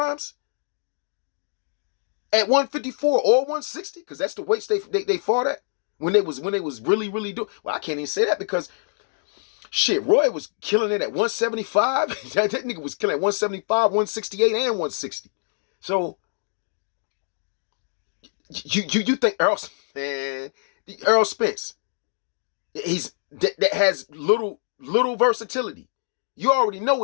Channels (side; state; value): right; silent; digital silence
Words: At 154 or 160? Because that's the weights they fought at when they was really doing. Well, I can't even say that because shit, Roy was killing it at 175. that nigga was killing at 175, 168, and 160. So you think Errol Spence, that has little versatility. You already know